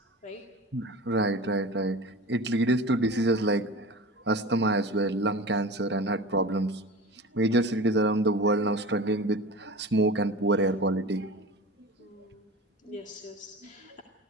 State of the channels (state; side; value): normal; both; correlation 0.34